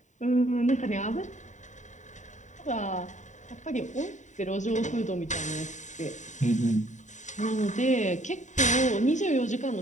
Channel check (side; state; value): right; late; 0.35 ms